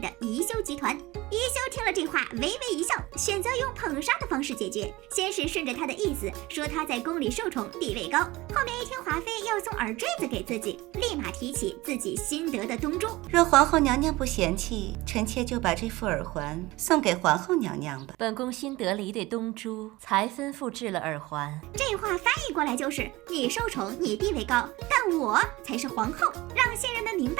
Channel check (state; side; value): quieter; left; 20.2 dB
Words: 宜修集团。宜修听了这话，微微一笑，选择用捧杀的方式解决。先是顺着他的意思说他在宫里受宠，地位高，后面一听华妃要送耳坠子给自己，立马提起自己新得的东珠。若皇后娘娘不嫌弃，臣妾就把这副耳环送给皇后娘娘吧。本宫新得了一对东珠，才吩咐制了耳环。这话翻译过来就是你受宠，你地位高，但我才是皇后，让新人们明